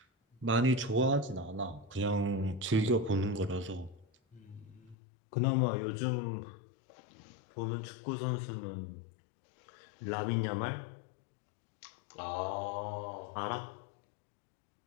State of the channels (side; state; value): right; drops out; at 5.0 s